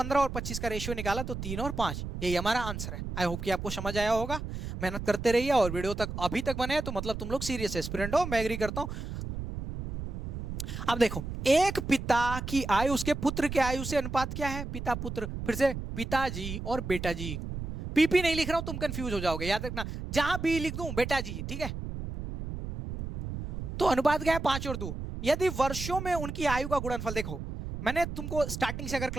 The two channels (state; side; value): noise; right; rumble, 6 dB below the sound